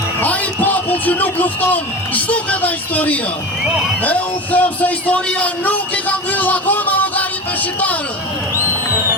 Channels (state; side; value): normal; both; correlation 0.28